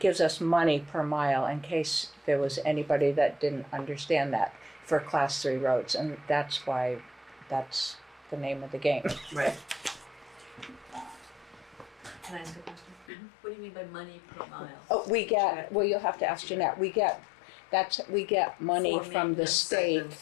us money per mile, in case there was anybody that didn't understand that, for class 3 roads, and that's why that's the name of the game. Right. Can I ask a question? What do you mean by money per mile? Oh, you'll have to ask Jeanette. We get money For from the maintenance state segments,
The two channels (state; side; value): drops out; right; at 13.1 s